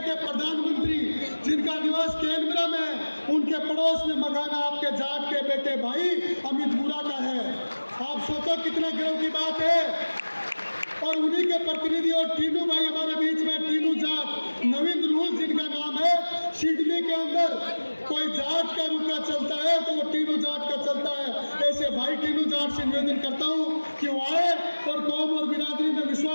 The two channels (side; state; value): both; inverted; correlation -1.00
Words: प्रधानमंत्री जिनका निवास कैनबरा में है उनके पड़ोस में मकान आपके जाट के बेटे भाई अमित बुरा का है। आप सोचो कितना गर्व की बात है। और उन्हीं के प्रतिनिधि और टीनू भाई हमारे बीच में, टीनू जाट नवीन रूल जिनका नाम है। सिडनी के अंदर कोई जाट का रुका चलता है तो वो टीनू जाट का चलता है। ऐसे भाई टीनू जाट से निवेदन करता हूँ कि वो आए और कौम और बिरादरी में